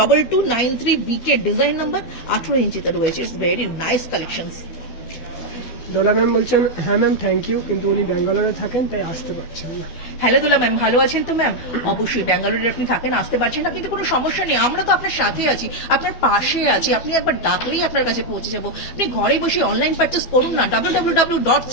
BK ডিজাইন নাম্বার, 18 ইঞ্চিতে রয়েছে। It's very nice collections. Dola ma'am বলছেন হ্যাঁ ম্যাম থ্যাংক ইউ, কিন্তু উনি ব্যাঙ্গালোরে থাকেন তাই আসতে পারছেন না। হ্যালো দোলা ম্যাম, ভালো আছেন তো ম্যাম? অবশ্যই ব্যাঙ্গালোরে আপনি থাকেন, আসতে পারছেন না কিন্তু কোনো সমস্যা নেই, আমরা তো আপনার সাথে আছি, আপনার পাশে আছি। আপনি একবার ডাকলেই আপনার কাছে পৌঁছে যাবো। আপনি ঘরে বসে অনলাইন পারচেস করুন না,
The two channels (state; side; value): late; right; 12 ms